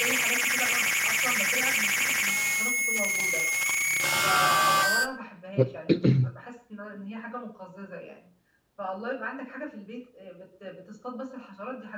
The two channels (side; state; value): both; identical; correlation 1.00